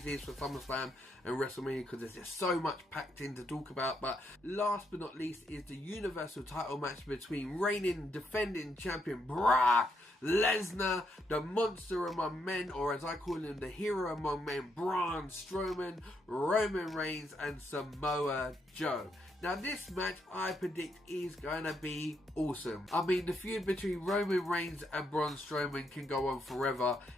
is for SummerSlam and WrestleMania, because there's just so much packed in to talk about. But last but not least is the Universal title match between reigning defending champion Brock Lesnar, the monster among men, or as I call him, the hero among men, Braun Strowman, Roman Reigns and Samoa Joe. Now this match I predict is going to be awesome. I mean, the feud between Roman Reigns and Braun Strowman can go on forever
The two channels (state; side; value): normal; both; correlation 0.77